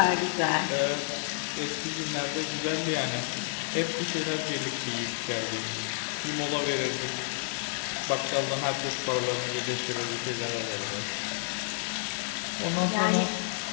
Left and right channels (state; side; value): silent; right; digital silence